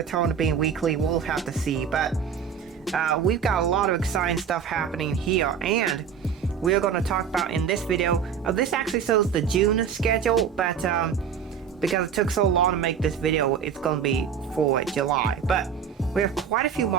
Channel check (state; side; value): quieter; left; 7.4 dB